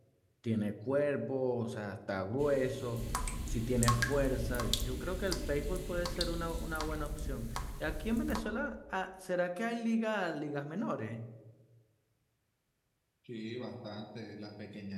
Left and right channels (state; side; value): identical; both; correlation 1.00